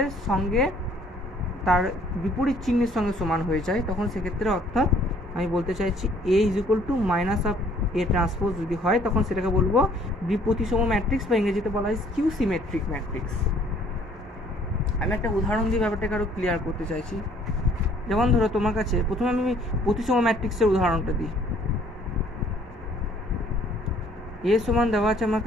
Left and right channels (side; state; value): both; normal; correlation 0.59